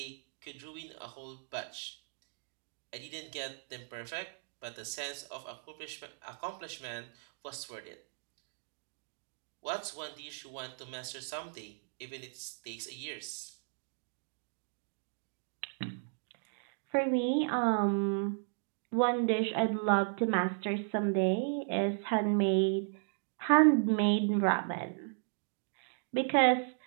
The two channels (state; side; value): silent; left; digital silence